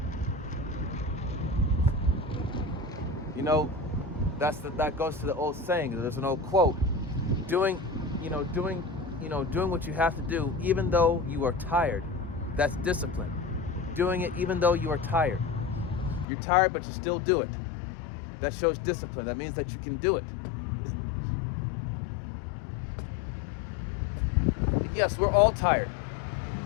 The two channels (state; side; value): drops out; right; at 16.2 s